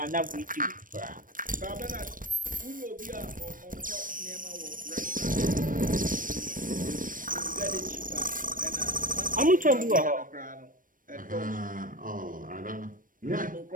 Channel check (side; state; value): left; late; 0.40 ms